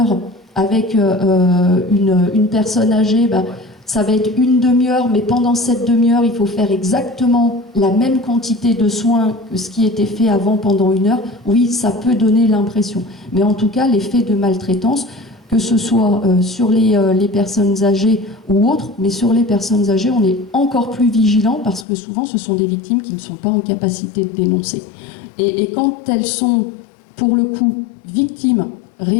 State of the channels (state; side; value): drops out; right; at 21.9 s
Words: avec une personne âgée, ben, ça va être une demi-heure, mais pendant cette demi-heure, il faut faire exactement la même quantité de soins que ce qui était fait avant pendant 1 heure. Oui, ça peut donner l'impression. Mais en tout cas, les faits de maltraitance, que ce soit sur les personnes âgées ou autres, mais sur les personnes âgées, on est encore plus vigilant parce que souvent, ce sont des victimes qui ne sont pas en capacité de dénoncer. Et quand elles sont, pour le coup, victimes